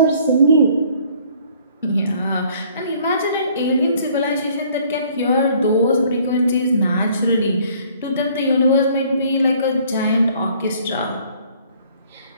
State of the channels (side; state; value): both; inverted; correlation -0.58